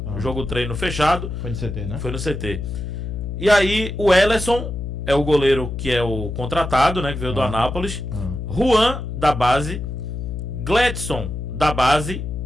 Jogo treino fechado. Foi no CT, né? Foi no CT. E aí o Ellerson é o goleiro que é o contratado, né? Que veio do Anápolis. Juan, da base. Gledson, da base.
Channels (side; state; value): left; noise; hum, 5 dB below the sound